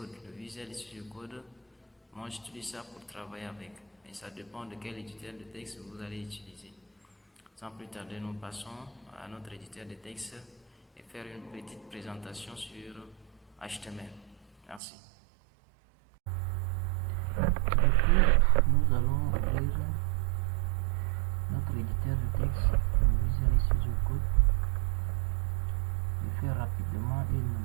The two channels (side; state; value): left; drops out; at 14.8 s